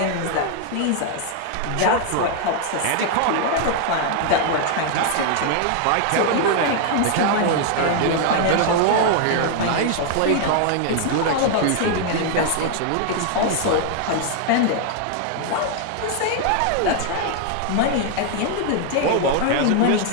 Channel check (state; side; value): different; both; correlation 0.00